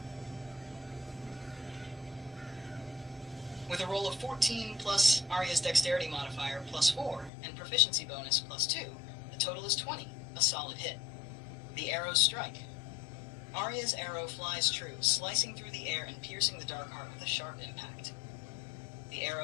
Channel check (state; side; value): drops out; right; at 7.3 s